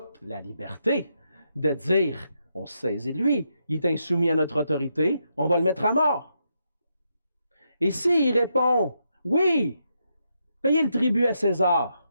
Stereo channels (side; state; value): both; inverted; correlation -0.81